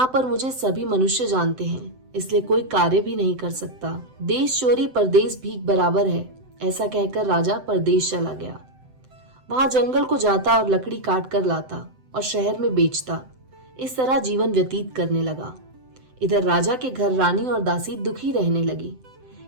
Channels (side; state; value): left; late; 7.8 ms